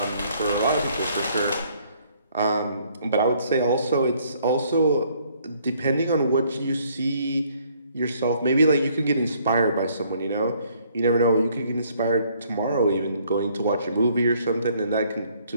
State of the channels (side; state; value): both; inverted; correlation -0.64